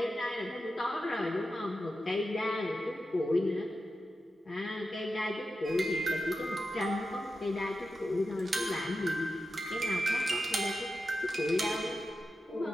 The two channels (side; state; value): both; normal; correlation 0.90